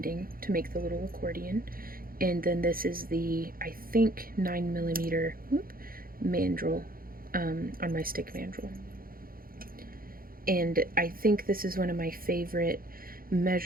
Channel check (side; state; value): left; late; 0.42 ms